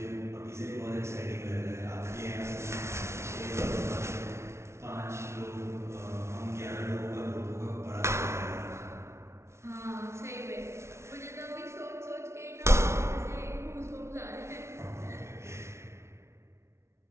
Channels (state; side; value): late; left; 0.13 ms